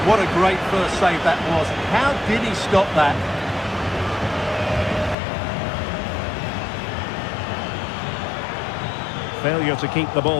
what a great first save that was. How did he stop that? Failure to keep the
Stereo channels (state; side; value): drops out; right; at 5.2 s